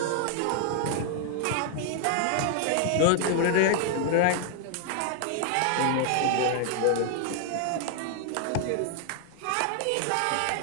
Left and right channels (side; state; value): both; different; correlation 0.00